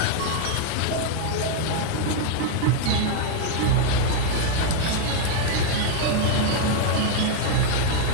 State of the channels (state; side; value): different; both; correlation 0.00